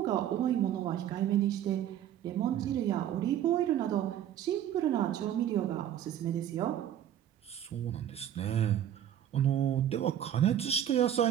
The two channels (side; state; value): left; quieter; 10.8 dB